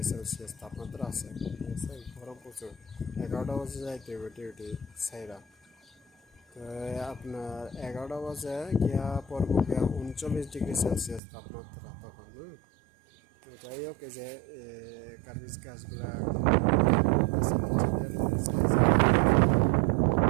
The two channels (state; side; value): drops out; left; at 11.2 s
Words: তাপমাত্রা আছে। ঠিক আছে, গরম প্রচুর। 11টা বাজে যাইতে হবে ডিউটি সাইরা। তো আপনার 11টা বাজে গিয়া পড়বো গিয়া 39°C তাপমাত্রা তখন। তো যাই হোক, এই যে কার্বিজ গাছগুলা